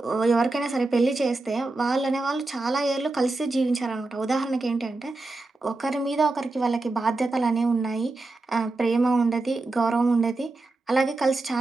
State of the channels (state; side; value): quieter; left; 3.2 dB